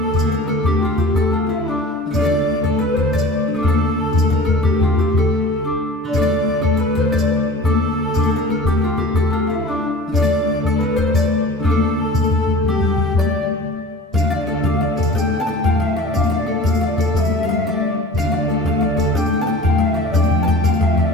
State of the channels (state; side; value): normal; both; correlation 0.41